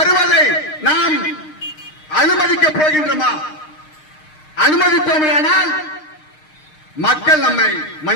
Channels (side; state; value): right; late; 6.5 ms